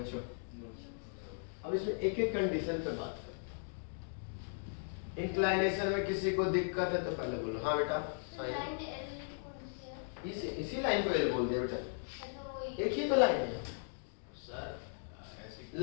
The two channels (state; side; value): silent; right; digital silence